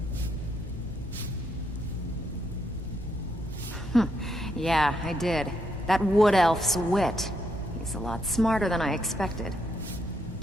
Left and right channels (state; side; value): normal; both; correlation 0.77